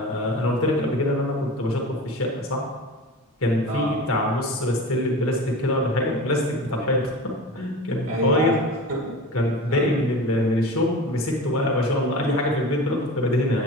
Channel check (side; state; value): both; normal; correlation 0.34